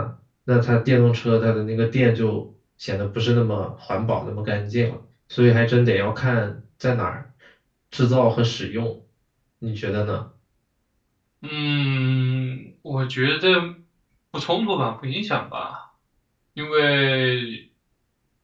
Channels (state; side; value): identical; both; correlation 1.00